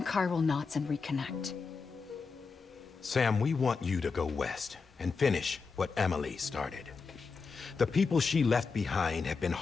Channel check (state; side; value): quieter; right; 4.9 dB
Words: chiral knots and reconnect. Sam, we want you to go west and finish what Emily started. The people she left behind have been